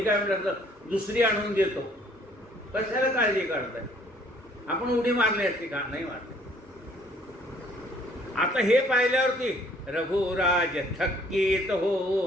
काय म्हटलं दुसरी आणून देतो, कशाला काळजी काढताय? आपण उडी मारली असते का? नाही मारली. आता हे पाहिल्यावरती रघुराज थक्कीत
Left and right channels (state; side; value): normal; both; correlation 0.60